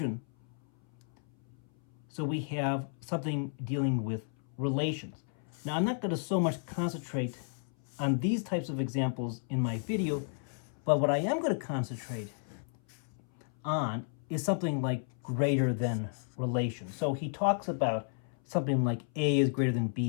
So we have something dealing with relations. Now, I'm not going to so much concentrate on these types of examples in my video, but what I am going to concentrate on is something like greater than relation. So he talks about something like A is greater than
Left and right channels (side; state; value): right; silent; 56 dB below the other